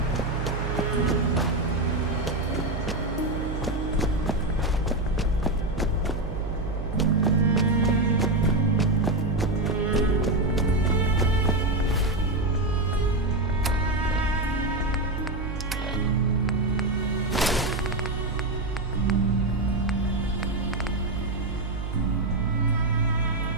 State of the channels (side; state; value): right; noise; hum, 5 dB below the sound